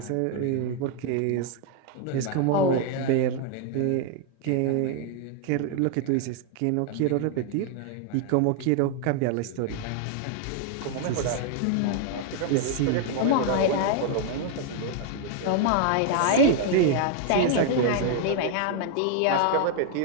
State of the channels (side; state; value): both; different; correlation 0.00